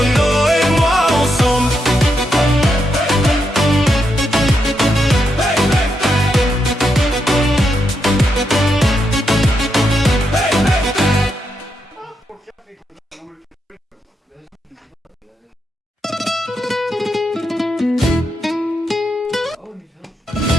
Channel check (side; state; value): both; normal; correlation 0.82